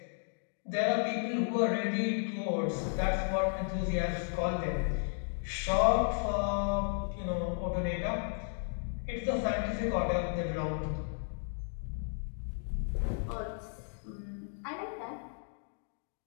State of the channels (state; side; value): silent; right; 55 dB below the other